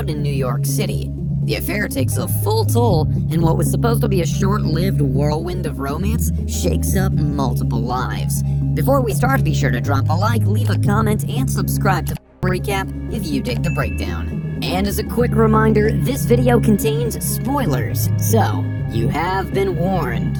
in New York City. The affair takes a full toll, and what was supposed to be a short-lived whirlwind of romance shakes up multiple lives. Before we start, be sure to drop a like, leave a comment, and subscribe to Recap if you dig the breakdown. And as a quick reminder, this video contains spoilers, so you have been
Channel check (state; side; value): identical; both; correlation 1.00